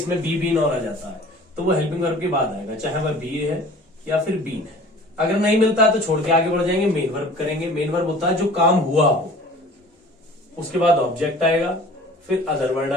बी बीन और आ जाता है तो वो हेल्पिंग वर्ब के बाद आएगा, चाहे वह बी है या फिर बीन है। अगर नहीं मिलता है तो छोड़ के आगे बढ़ जाएंगे, मेन वर्ब करेंगे। मेन वर्ब होता है जो काम हुआ हो, उसके बाद ऑब्जेक्ट आएगा, फिर अदर वर्ड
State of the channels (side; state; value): both; normal; correlation 0.46